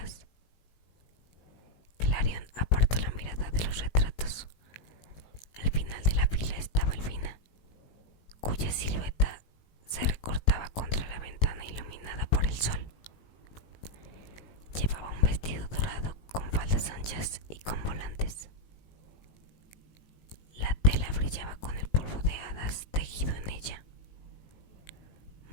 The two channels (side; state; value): right; late; 18 ms